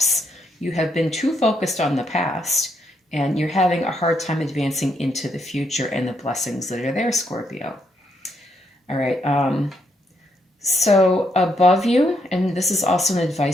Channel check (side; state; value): both; normal; correlation 0.76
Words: you have been too focused on the past and you're having a hard time advancing into the future and the blessings that are there, Scorpio. All right. So above you, and this is also an